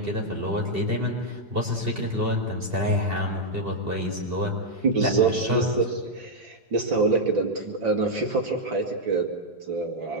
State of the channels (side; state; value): left; late; 2.7 ms